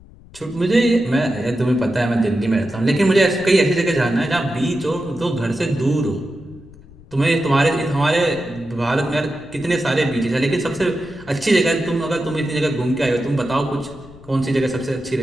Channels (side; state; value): left; noise; rumble, 22 dB below the sound